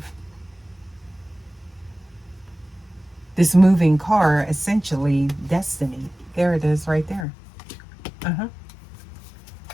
this moving car, essentially destiny. There it is right there.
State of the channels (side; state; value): right; drops out; at 7.2 s